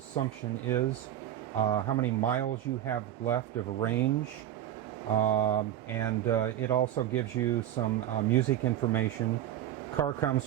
is, how many miles you have left of range, and it also gives you some music information. Car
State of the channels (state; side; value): quieter; left; 11.8 dB